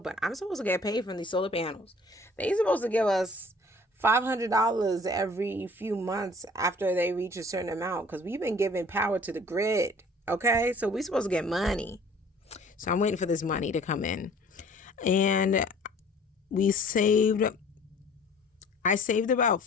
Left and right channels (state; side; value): normal; both; correlation 0.52